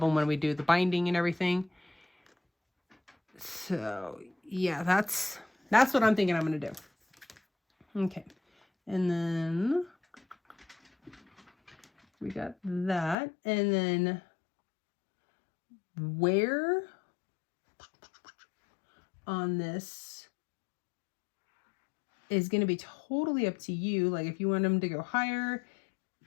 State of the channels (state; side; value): drops out; right; at 13.2 s